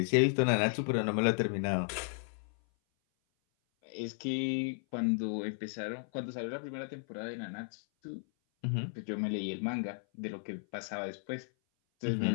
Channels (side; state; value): right; silent; 55 dB below the other